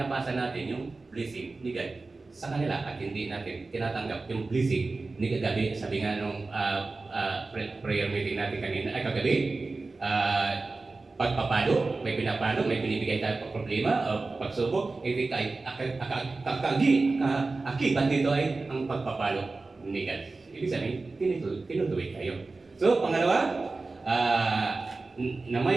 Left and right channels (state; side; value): quieter; left; 3.6 dB